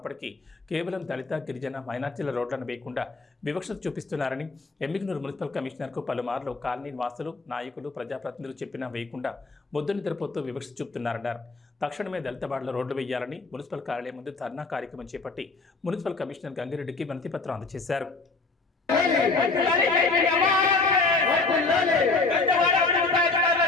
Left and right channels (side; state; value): right; quieter; 3.7 dB